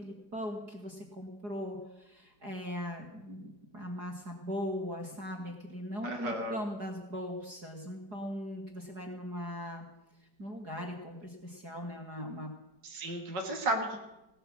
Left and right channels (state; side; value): late; left; 4.8 ms